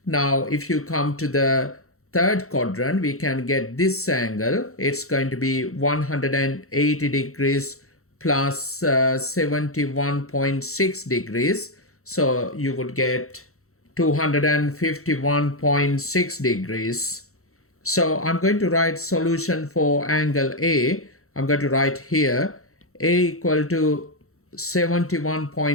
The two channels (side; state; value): right; late; 0.64 ms